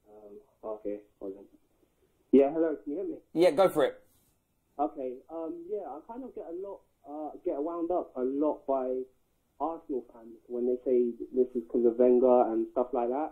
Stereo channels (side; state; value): both; identical; correlation 1.00